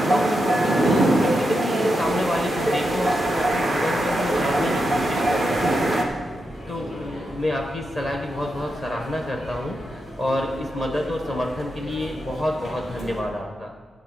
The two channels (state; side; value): normal; both; correlation 0.86